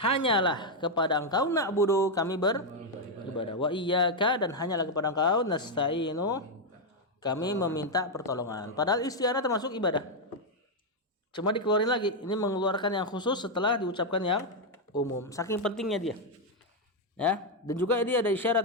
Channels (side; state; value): both; normal; correlation 0.01